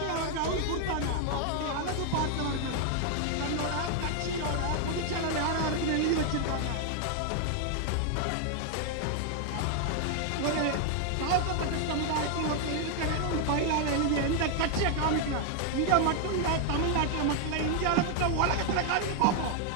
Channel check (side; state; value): both; different; correlation 0.00